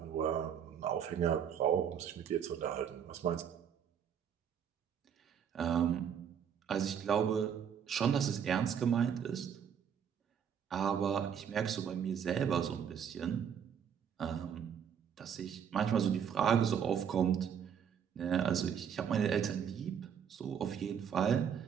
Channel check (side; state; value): left; quieter; 8.1 dB